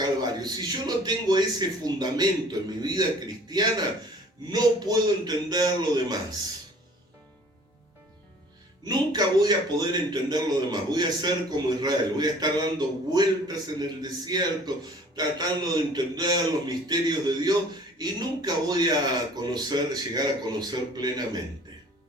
Si yo no tengo ese fundamento en mi vida cristiana, no puedo entender lo demás. Nunca voy a poder entender lo demás. Voy a ser como Israel, voy a estar dando vueltas en el desierto, tratando de entender los misterios de Dios, y nunca voy a llegar a conocer plenamente.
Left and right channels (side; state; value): both; normal; correlation 0.50